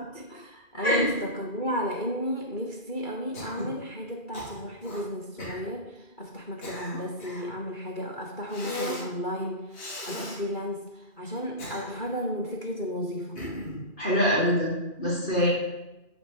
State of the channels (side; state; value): right; late; 2.4 ms